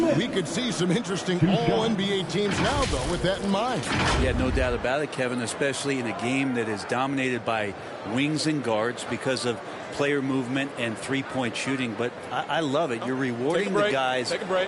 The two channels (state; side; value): identical; both; correlation 1.00